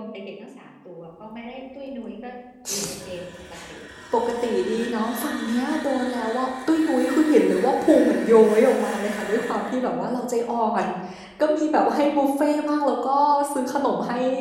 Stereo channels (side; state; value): both; identical; correlation 1.00